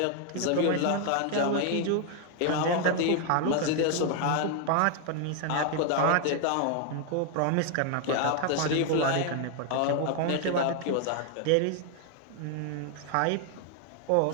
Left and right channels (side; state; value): both; different; correlation 0.00